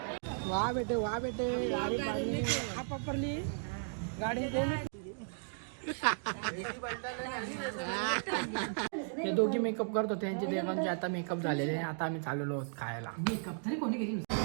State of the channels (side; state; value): left; silent; digital silence